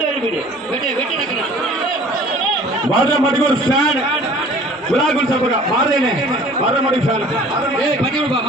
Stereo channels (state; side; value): normal; both; correlation 0.49